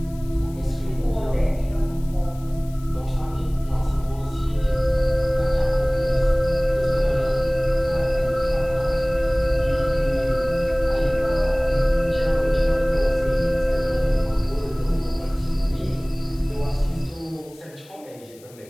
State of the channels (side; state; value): left; noise; hiss, 25 dB below the sound